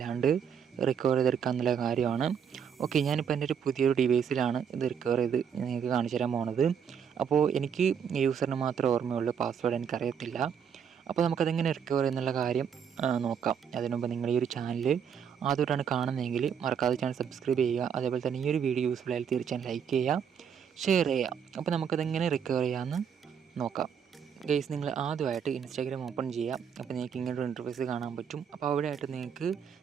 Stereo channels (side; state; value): left; quieter; 7.6 dB